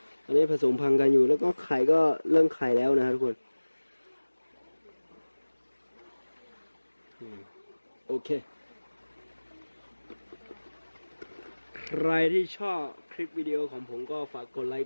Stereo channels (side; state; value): both; inverted; correlation -1.00